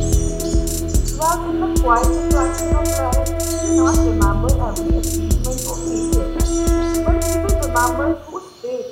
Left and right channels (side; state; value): both; identical; correlation 1.00